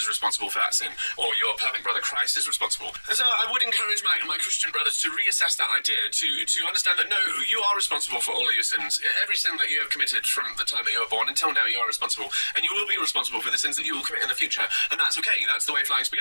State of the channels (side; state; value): both; inverted; correlation -1.00